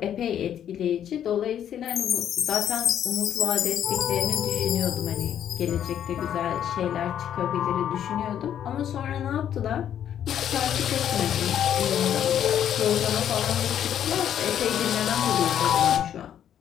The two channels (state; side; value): quieter; right; 9.9 dB